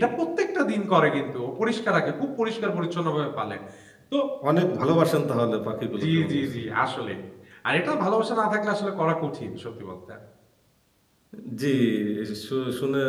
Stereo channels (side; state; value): both; identical; correlation 1.00